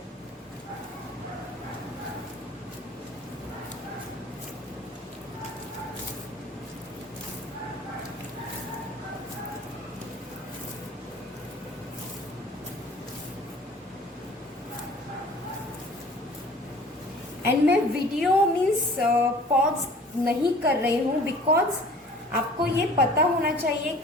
एंड मैं वीडियो मीन्स पॉज नहीं कर रही हूँ, बिकॉज आपको ये पता होना चाहिए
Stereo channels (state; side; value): normal; both; correlation 0.48